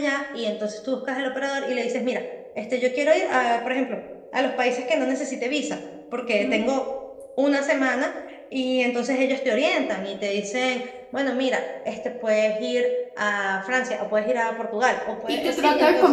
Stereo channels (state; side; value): identical; both; correlation 1.00